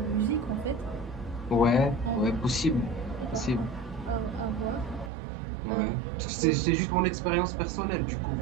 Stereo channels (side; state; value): left; drops out; at 5.1 s